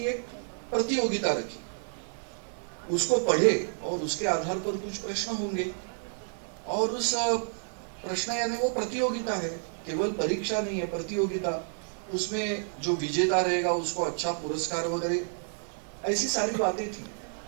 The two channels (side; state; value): left; silent; digital silence